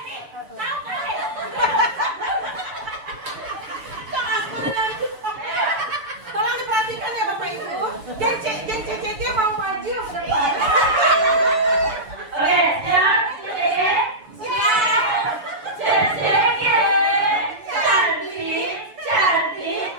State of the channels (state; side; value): late; left; 6.9 ms